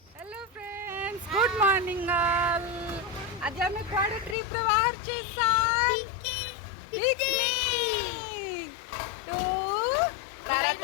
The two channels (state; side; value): drops out; right; at 4.4 s